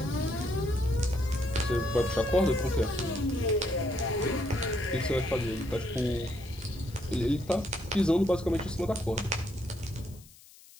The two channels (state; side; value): noise; left; hiss, 23 dB below the sound